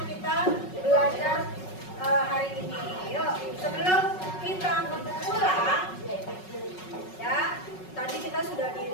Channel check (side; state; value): right; late; 5.4 ms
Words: kita belajar hari ini. Yuk, sebelum kita pulang, ya, tadi kita sudah